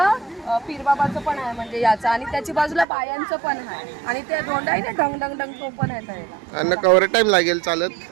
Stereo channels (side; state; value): left; drops out; at 2.9 s